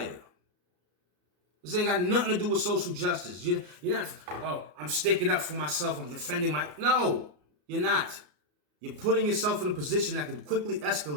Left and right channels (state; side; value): late; left; 34 ms